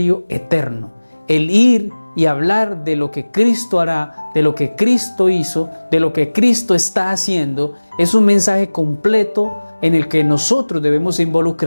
eterno. El ir y hablar de lo que Cristo hará, de lo que Cristo hizo, de lo que Cristo está haciendo, es un mensaje completo en el que nosotros debemos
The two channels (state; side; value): inverted; both; correlation -1.00